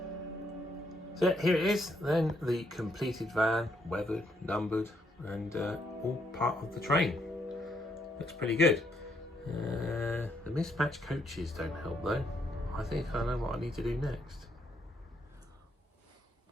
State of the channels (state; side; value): normal; both; correlation 0.74